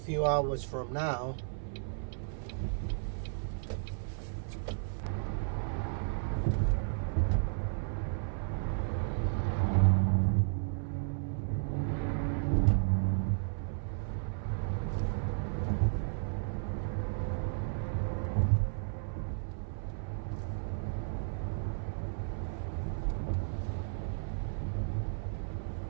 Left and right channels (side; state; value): left; silent; 55 dB below the other